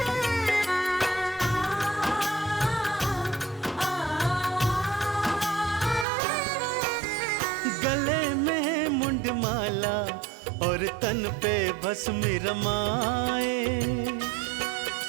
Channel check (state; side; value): drops out; left; at 6.1 s